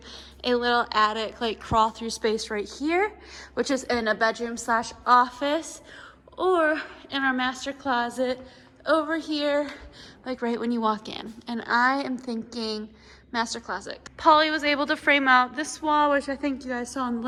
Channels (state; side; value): identical; both; correlation 1.00